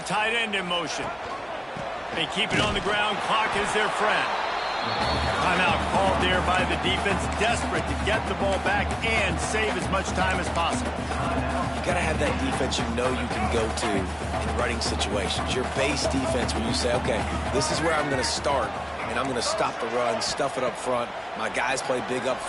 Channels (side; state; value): both; identical; correlation 1.00